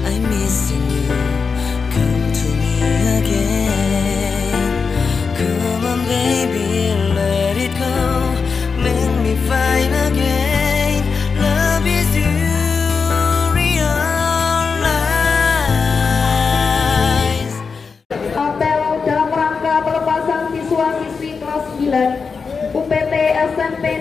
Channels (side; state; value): right; quieter; 5.2 dB